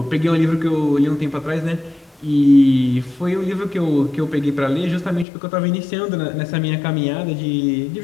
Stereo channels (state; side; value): drops out; right; at 5.2 s